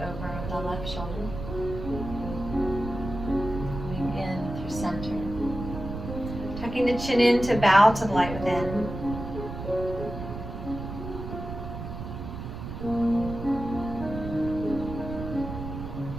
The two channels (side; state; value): right; noise; rumble, 8 dB below the sound